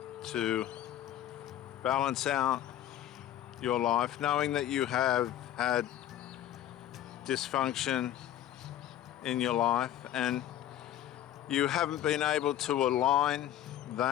to balance out your life, knowing that you have had dysfunction in your life and you haven't been able to align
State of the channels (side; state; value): right; quieter; 11.9 dB